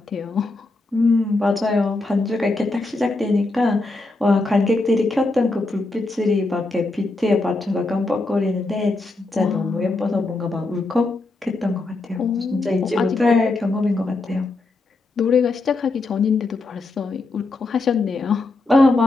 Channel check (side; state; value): right; quieter; 3.1 dB